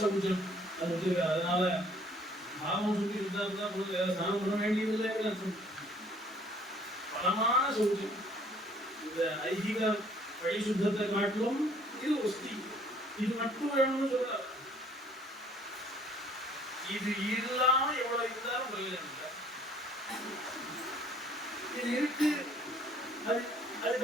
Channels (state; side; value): normal; both; correlation 0.59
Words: அது வச்சிருக்க. அதனால பாவம் சுத்தி இருந்தா போது வேற ஸ்நானம் பண்ண வேண்டியதில்லை. பரமான சௌச்சம், இந்த ஐகிக வழி சுத்தத்தை காட்டிலும் இது ஒஸ்தி. இது மட்டும் வேணும்னு சொல்ல, இது இல்லாம எவ்வளவு இருந்தாலும் பிரயோஜனம் இல்லை. இது இருக்கு, அது